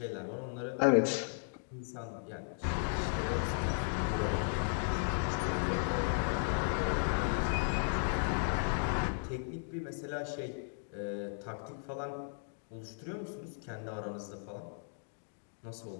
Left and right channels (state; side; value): silent; right; digital silence